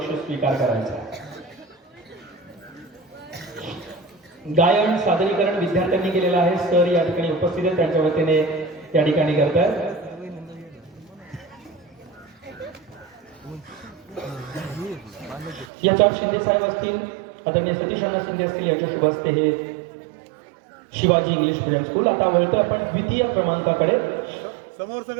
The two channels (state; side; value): drops out; left; at 15.7 s